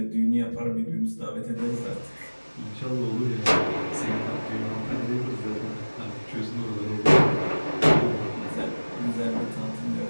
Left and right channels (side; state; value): both; inverted; correlation -1.00